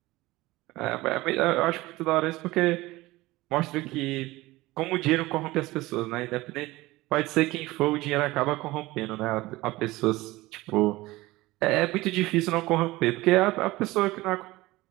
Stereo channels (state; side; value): quieter; left; 19.4 dB